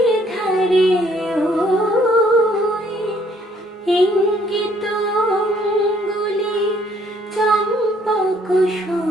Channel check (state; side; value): normal; both; correlation 0.64